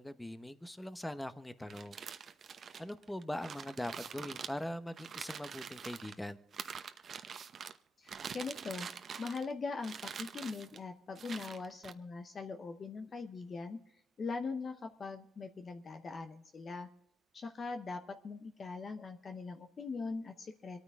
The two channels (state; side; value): normal; both; correlation 0.87